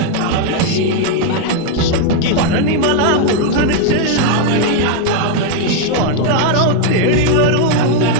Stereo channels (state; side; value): different; both; correlation 0.00